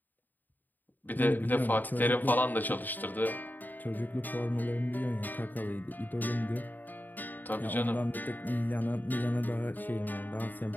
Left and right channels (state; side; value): late; right; 0.088 ms